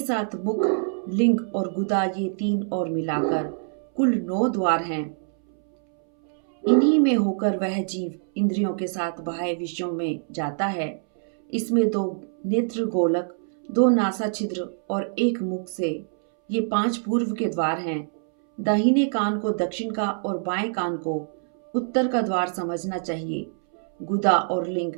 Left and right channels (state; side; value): silent; left; 62 dB below the other